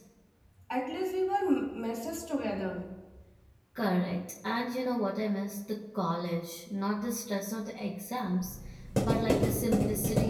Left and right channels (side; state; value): both; identical; correlation 1.00